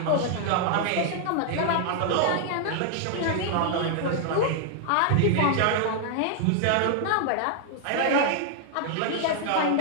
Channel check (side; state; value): both; different; correlation 0.00